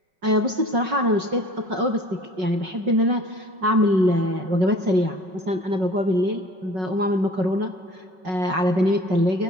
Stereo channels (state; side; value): late; left; 5.4 ms